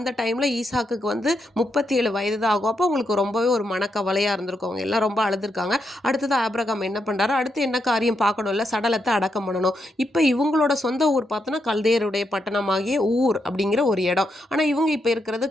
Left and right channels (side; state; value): both; normal; correlation 0.82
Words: டைமில் ஈசாக்குக்கு வந்து 37 வயது தான் ஆகும். அப்போ அவங்களுக்கு ரொம்பவே ஒரு மனக்கவலையாக இருந்திருக்கும். அவங்க எல்லாம் ரொம்ப அழுதுருக்காங்க. அடுத்தது ஆபிரகாம் என்ன பண்ணுறாரு, அடுத்து என்ன காரியம் பார்க்கணும்ல, சடலத்தை அடக்கம் பண்ணணும். இப்போ இவங்களோட சொந்த ஊர் பார்த்தோன்னா கல்தேயருடைய பட்டணமாகிய ஊர் அப்படிங்கிற ஒரு இடம். ஆனால் இவங்க இப்போ இருக்கிறது